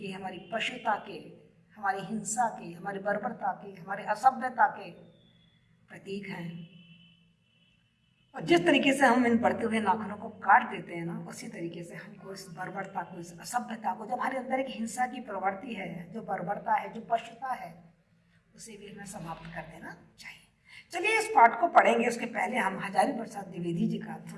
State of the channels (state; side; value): identical; both; correlation 1.00